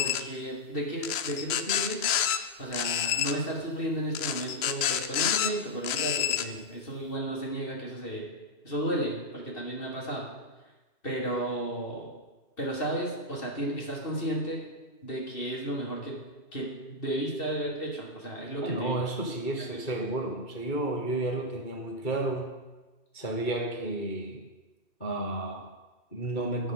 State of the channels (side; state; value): right; late; 3.0 ms